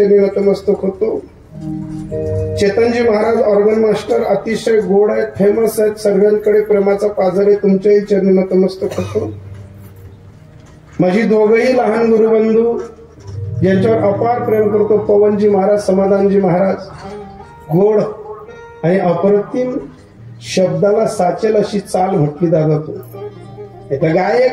नतमस्तक होतो. चेतनजी महाराज ऑर्गन मास्टर अतिशय गोड आहेत, फेमस आहेत, सर्वांकडे प्रेमाचा पाझर आहे, तुमच्याही चरणी नतमस्तक होतो. माझी दोघही लहान गुरुबंधू ज्यांच्यावर अपार प्रेम करतो, पवनजी महाराज, समाधानजी महाराज, गोड आणि अप्रतिम शब्दाला साचेल अशी चाल म्हटली जातो. आता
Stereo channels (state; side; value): identical; both; correlation 1.00